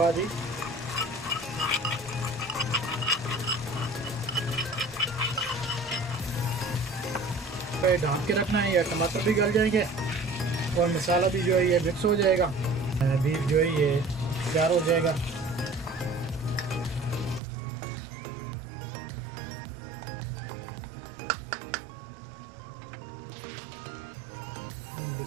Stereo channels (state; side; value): drops out; left; at 17.4 s